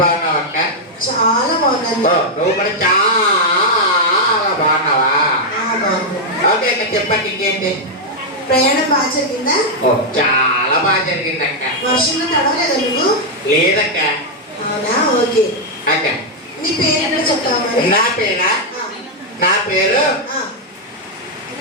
అక్క? చాలా బాగున్నాను. నువ్వు కూడా చాలా బాగున్నావా? ఓకే అక్క. చెప్పక్క ఇంకేంటి? ప్రయాణం బాగా జరిగిందా? చాలా బాగా జరిగింది అక్క. వర్షంలో తడవలేదా నువ్వు? లేదక్క. అవునా? ఓకే అక్క. నీ పేరు ఎక్కడ చెప్తావా మరి? నా పేరా? నా పేరు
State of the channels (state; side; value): normal; both; correlation -0.01